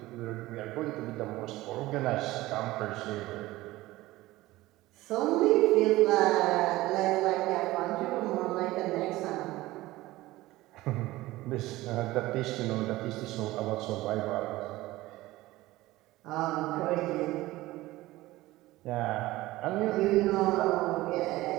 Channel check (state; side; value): quieter; left; 18.0 dB